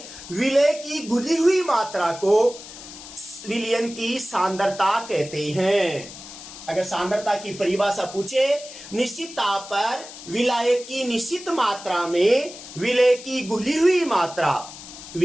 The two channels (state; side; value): noise; left; hiss, 14 dB below the sound